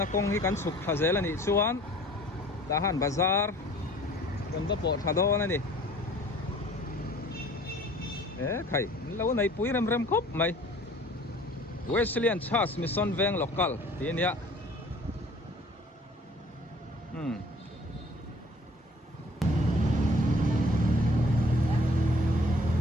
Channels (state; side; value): normal; both; correlation 0.52